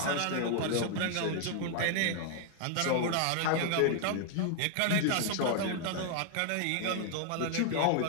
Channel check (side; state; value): both; different; correlation 0.00